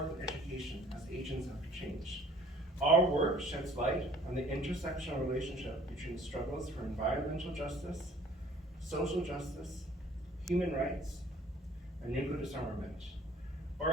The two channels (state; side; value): normal; both; correlation 0.53